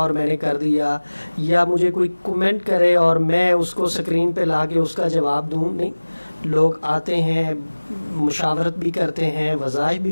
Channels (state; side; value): inverted; both; correlation -1.00